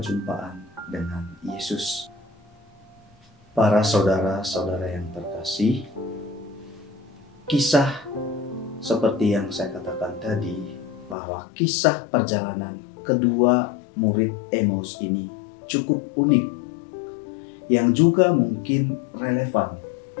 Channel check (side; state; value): right; drops out; at 11.2 s